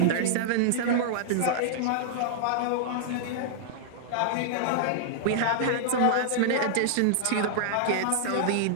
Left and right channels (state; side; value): different; both; correlation -0.01